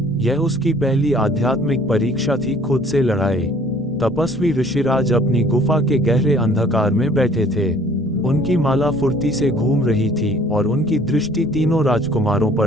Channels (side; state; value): both; normal; correlation 0.55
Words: यह उसकी पहली आध्यात्मिक परीक्षा थी, खुद से लड़ाई। तपस्वी ऋषिराज अपनी गुफा के गहरे अंधकार में बैठे थे। उनकी माला फुर्ती से घूम रही थी और उनकी दृष्टि तीनों राजकुमारों